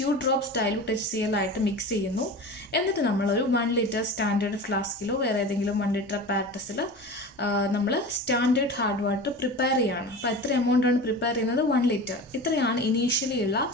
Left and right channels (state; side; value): normal; both; correlation 0.32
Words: ഡ്രോപ്സ് ഡൈലൂട്ട് HCl ആയിട്ട് മിക്സ് ചെയ്യുന്നു. എന്നിട്ട് നമ്മളൊരു 1 ലിറ്റർ സ്റ്റാൻഡേർഡ് ഫ്ലാസ്കിലോ വേറെ ഏതെങ്കിലും 1 ലിറ്റർ പാരറ്റസിൽ നമ്മൾ സ്റ്റാൻഡേർഡ് ഹാർഡ് വാട്ടർ പ്രിപ്പയർ ചെയ്യുകയാണ്. അപ്പോൾ എത്ര എമൗണ്ടാണ് പ്രിപ്പയർ ചെയ്യുന്നത്? 1 ലിറ്റർ. ഇത്രയാണ് ഇനീഷ്യലി ഉള്ള